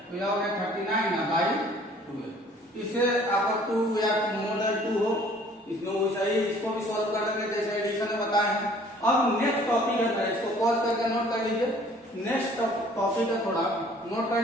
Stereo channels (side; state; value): both; normal; correlation 0.55